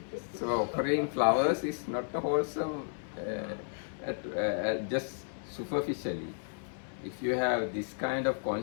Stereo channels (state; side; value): silent; right; 55 dB below the other